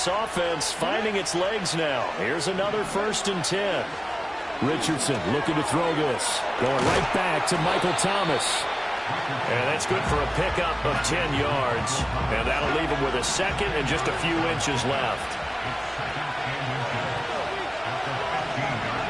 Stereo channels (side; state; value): both; identical; correlation 1.00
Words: offense finding its legs now. Here's another 1st and 10. Richardson looking to throw this. Going right back to Michael Thomas. And that's good for a pickup of 10 yards. And that'll leave him with a 2nd and just a few inches left.